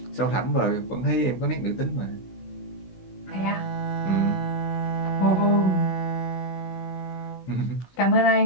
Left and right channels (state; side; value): late; right; 16 ms